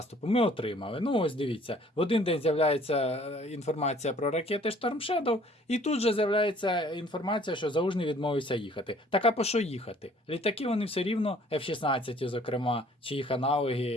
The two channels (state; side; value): normal; both; correlation 0.56